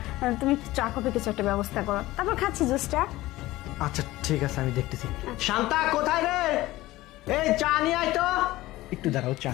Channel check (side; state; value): right; quieter; 17.6 dB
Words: তুমি চা কফি কিছু একটা ব্যবস্থা করো, তারপর খাচ্ছি জুসটা। আচ্ছা ঠিক আছে, আমি দেখতেছি। শান্তা কোথায় রে? এই চা নিয়ে আয় তো। একটু দাঁড়াও, চা